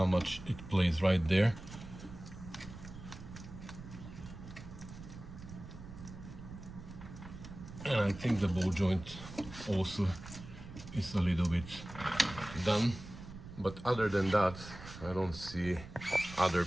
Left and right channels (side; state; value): right; noise; rumble, 13 dB below the sound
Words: much it plays right there. And I think the ball joint also is a little bit done. But other than that, I don't see other